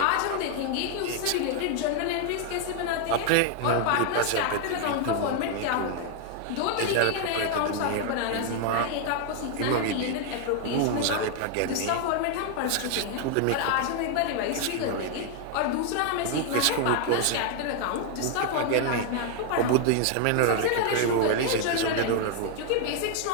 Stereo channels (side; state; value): both; different; correlation 0.00